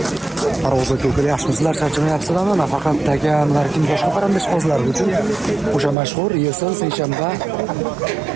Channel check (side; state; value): left; drops out; at 6.0 s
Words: Parvozga ko'klar yaxshimisizlar, charchamayapsizlarmi? Nafaqat takan, balki boshqa parandash qozlar uchun o'sha mashhur Yesil seshanba